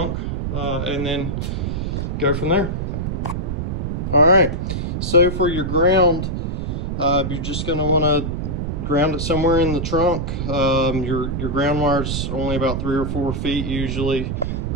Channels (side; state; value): right; noise; rumble, 2 dB below the sound